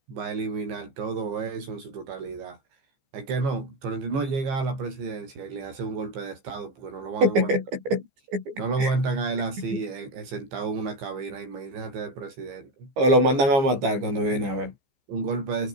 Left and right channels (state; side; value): late; left; 14 ms